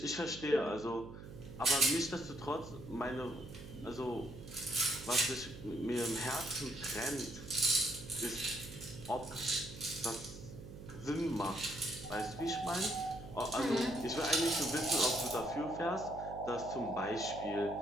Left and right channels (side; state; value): right; noise; hum, 13 dB below the sound